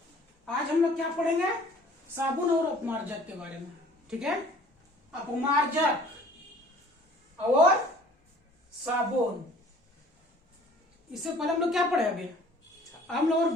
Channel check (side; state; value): both; normal; correlation 0.52